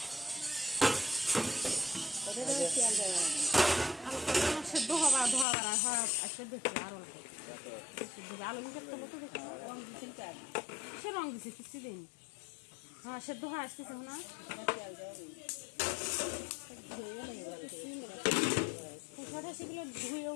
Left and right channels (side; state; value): right; drops out; at 5.5 s